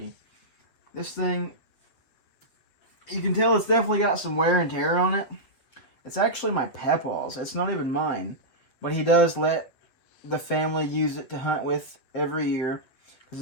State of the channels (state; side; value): late; right; 8.0 ms